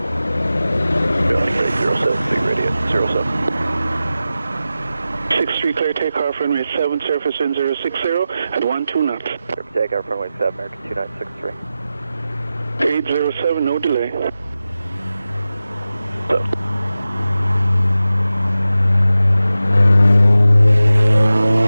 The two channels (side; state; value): both; inverted; correlation -0.93